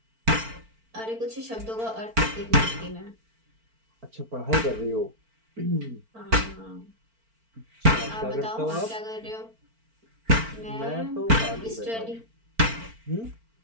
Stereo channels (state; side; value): late; left; 4.4 ms